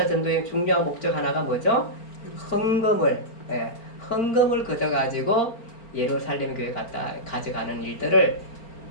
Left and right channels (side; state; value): right; late; 4.4 ms